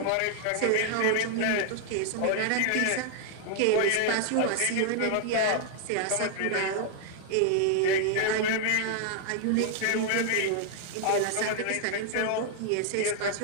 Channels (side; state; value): both; different; correlation 0.00